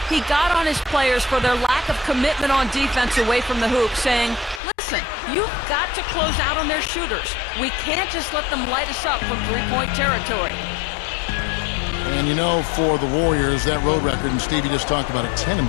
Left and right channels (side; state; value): right; drops out; at 4.6 s